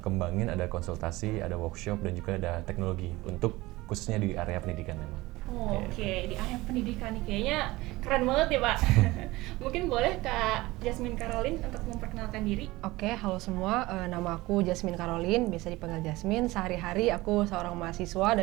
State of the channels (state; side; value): quieter; left; 19.9 dB